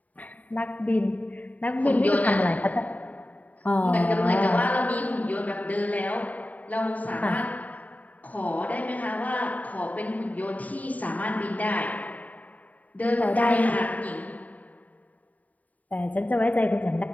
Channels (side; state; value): right; late; 0.072 ms